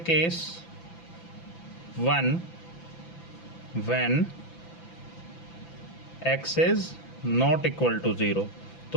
1 when x is not equal to 0,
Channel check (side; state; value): right; late; 5.9 ms